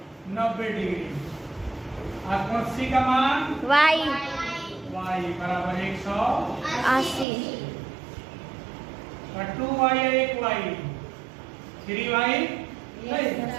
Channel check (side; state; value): left; drops out; at 7.2 s